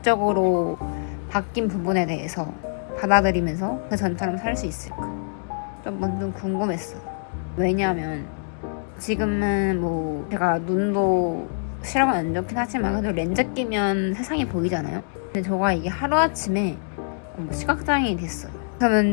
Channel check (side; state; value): right; silent; digital silence